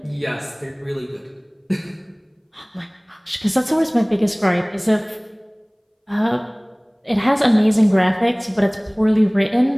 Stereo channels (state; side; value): identical; both; correlation 1.00